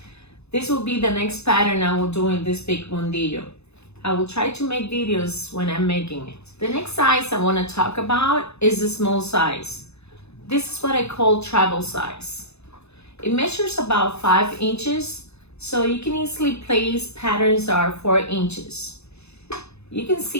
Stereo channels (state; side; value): late; right; 0.80 ms